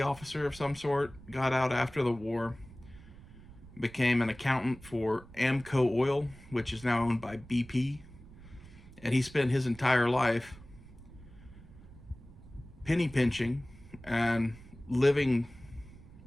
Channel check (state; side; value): noise; right; rumble, 19 dB below the sound